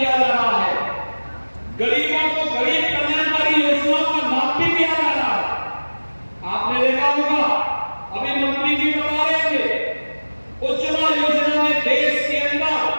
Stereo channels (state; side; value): inverted; both; correlation -1.00